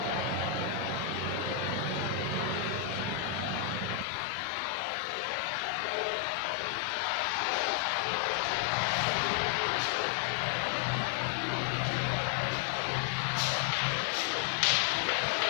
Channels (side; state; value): right; drops out; at 4.0 s